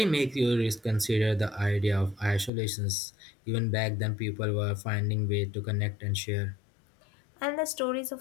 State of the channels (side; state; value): right; drops out; at 2.5 s